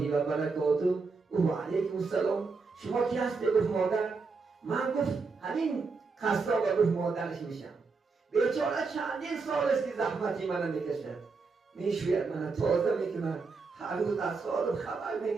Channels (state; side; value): quieter; left; 4.4 dB